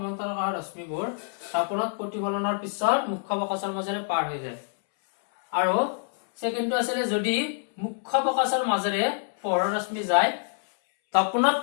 অহা ৰশ্মিবোৰ দাপোনত প্ৰতিফলনৰ পিছত মুখ্য ফকাছৰ মাজেৰে পাৰ হৈ যায়। আৰু ছেকেণ্ডটো আছিলে যদি মুখ্য ফকাছৰ মাজেৰে পোহৰৰ ৰশ্মি যায়, দাপোনত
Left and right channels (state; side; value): silent; right; 61 dB below the other